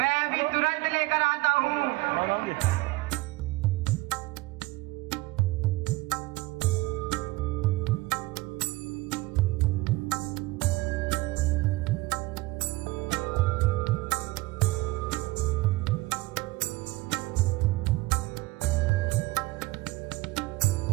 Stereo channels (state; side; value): quieter; left; 20.9 dB